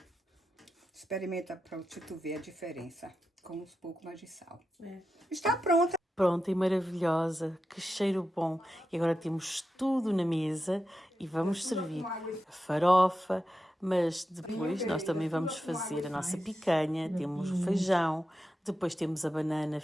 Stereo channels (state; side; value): normal; both; correlation 0.90